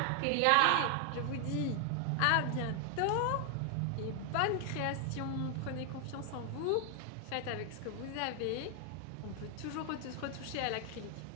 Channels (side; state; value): both; different; correlation 0.00